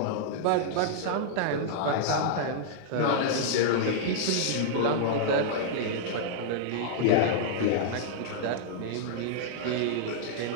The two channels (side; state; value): both; different; correlation -0.02